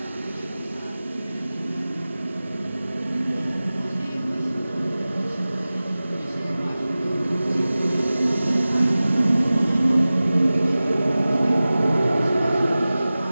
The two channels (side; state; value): both; inverted; correlation -0.97